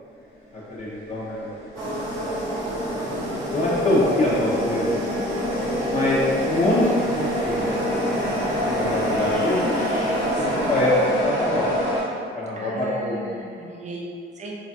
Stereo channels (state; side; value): normal; both; correlation 0.45